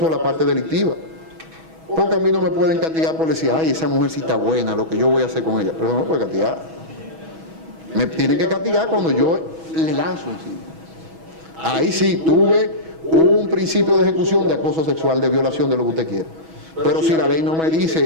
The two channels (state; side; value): late; left; 6.2 ms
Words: la parte delictiva. Porque a mí no me pueden castigar por decir, ay, esa mujer sí está buena, lo que yo voy a hacer con ella. Pero no me puede castigar. Me tienen que castigar cuando yo le lanzo encima. Ahí sí tuve un principio de ejecución de acoso sexual, de violación, de lo que usted quiera. Pero si la ley no me